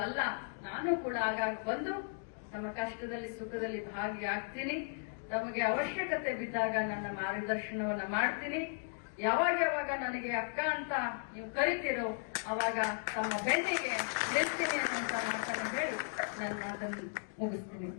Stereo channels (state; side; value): silent; right; digital silence